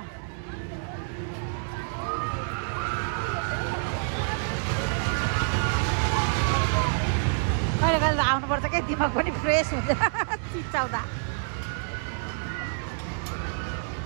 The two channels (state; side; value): silent; left; 60 dB below the other